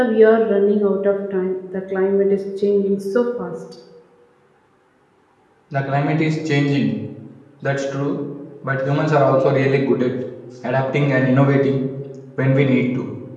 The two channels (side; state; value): both; identical; correlation 1.00